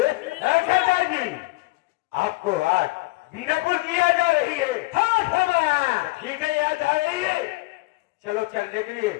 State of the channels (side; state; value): right; quieter; 23.4 dB